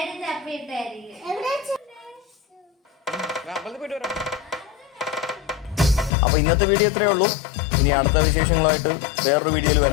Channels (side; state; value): right; drops out; at 6.1 s